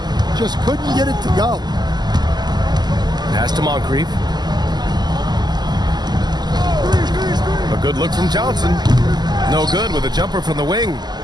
Just couldn't get it to go. Pass to Moncrief. A good look from Johnson. No good with a jumper from the wing.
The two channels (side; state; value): left; late; 0.20 ms